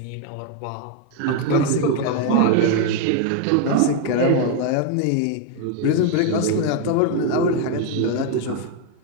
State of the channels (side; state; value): both; different; correlation 0.01